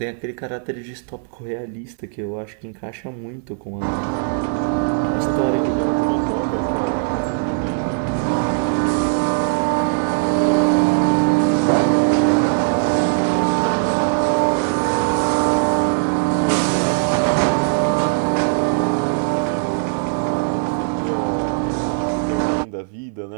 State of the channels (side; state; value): left; silent; 58 dB below the other